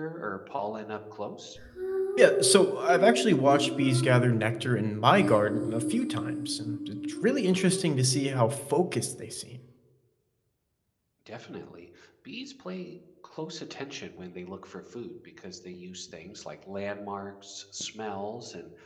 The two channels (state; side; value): identical; both; correlation 1.00